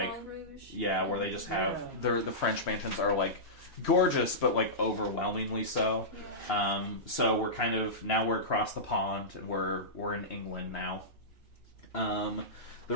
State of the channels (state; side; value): normal; both; correlation -0.16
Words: Moulin Rouge. where they just have the French mansions are like gorgeous, but like overwhelmingly so. So we're kind of now we're across the pond and we're in England now. The